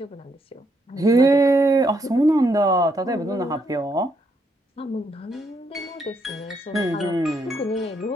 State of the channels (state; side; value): normal; both; correlation 0.76